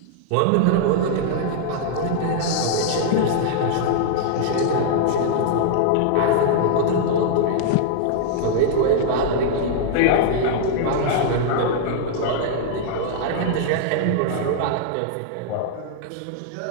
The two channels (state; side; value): different; both; correlation -0.01